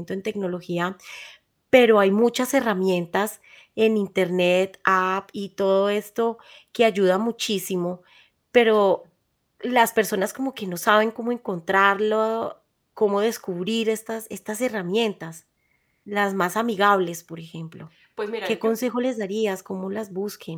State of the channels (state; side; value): identical; both; correlation 1.00